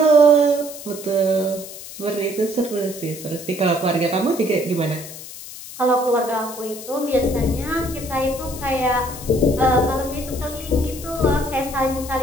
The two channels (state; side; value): noise; left; hiss, 13 dB below the sound